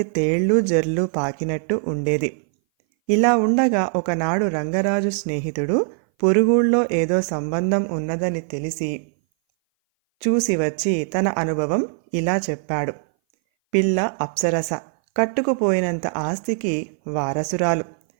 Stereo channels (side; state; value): left; silent; 59 dB below the other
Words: తేళ్ళు జర్లు పాకినట్టు ఉండేది. ఇలా ఉండగా ఒకనాడు రంగరాజు స్నేహితుడు పొరుగుళ్ళో ఏదో సంబంధం ఉన్నదని తెలిసి చూసి వచ్చి తన అనుభవం ఇలా చెప్పాడు. పిల్ల అప్సరస, కట్టుకుపోయినంత ఆస్తికి వారసురాలు.